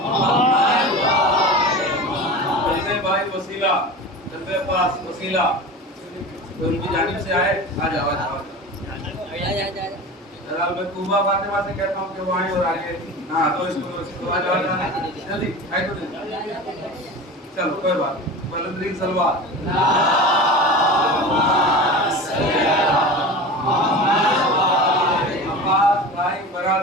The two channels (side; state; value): both; normal; correlation 0.32